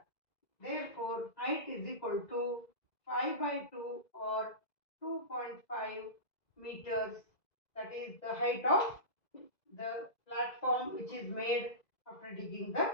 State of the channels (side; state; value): right; late; 2.0 ms